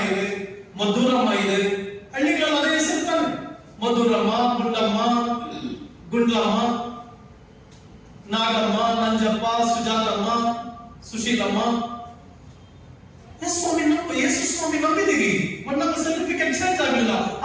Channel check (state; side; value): identical; both; correlation 1.00